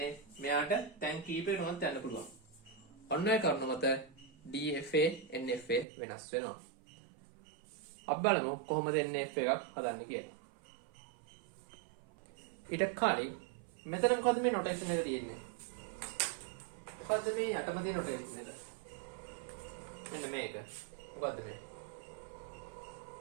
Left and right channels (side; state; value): left; drops out; at 5.9 s